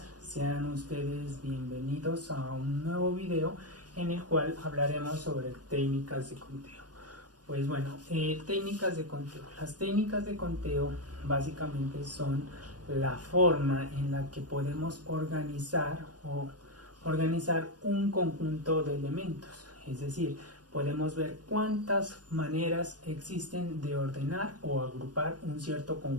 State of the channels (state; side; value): late; left; 0.69 ms